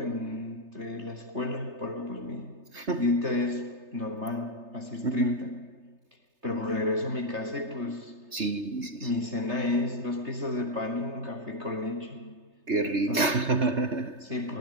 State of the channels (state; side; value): late; left; 3.3 ms